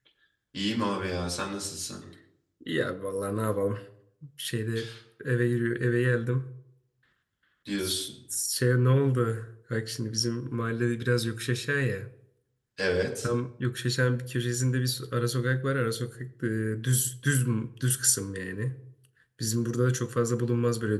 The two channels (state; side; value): identical; both; correlation 1.00